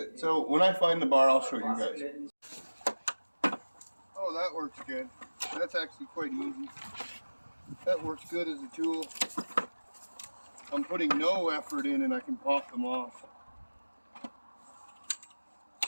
So when I find the bar, I'll show you guys. Oh, that works good. That's actually quite easy. That works good as a tool. I'm putting no effort in and I can pop them off.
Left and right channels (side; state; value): both; inverted; correlation -1.00